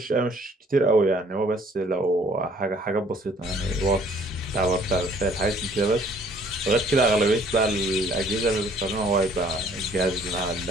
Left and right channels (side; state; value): both; normal; correlation 0.58